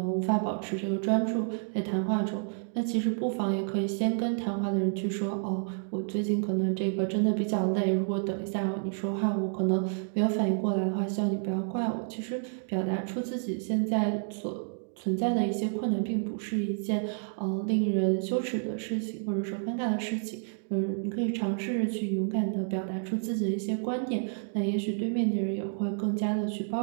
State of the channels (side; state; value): left; silent; digital silence